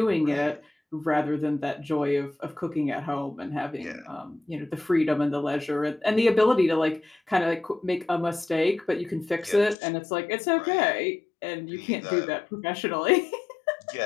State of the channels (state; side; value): drops out; right; at 9.8 s